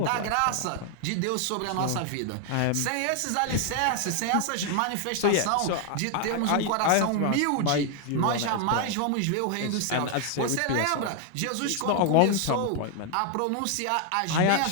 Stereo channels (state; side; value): different; both; correlation 0.00